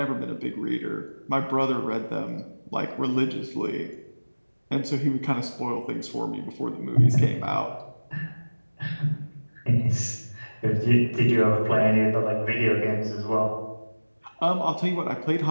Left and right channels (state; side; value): inverted; both; correlation -1.00